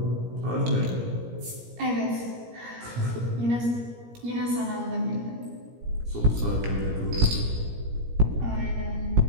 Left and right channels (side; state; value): left; late; 17 ms